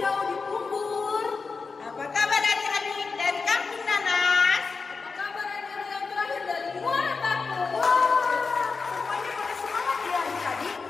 di Pumbur? Apa kabar adik-adik dari Kampung Nanas? Apa kabar adik-adik yang terakhir dari Muara Batu? Wah, semuanya pada semangat ya adik-adik.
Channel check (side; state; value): right; quieter; 4.6 dB